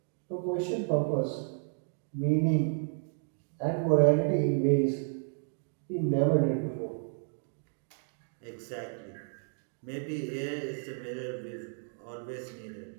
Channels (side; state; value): left; silent; 56 dB below the other